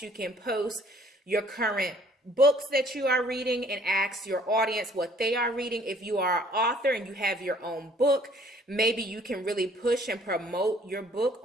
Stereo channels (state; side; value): normal; both; correlation 0.58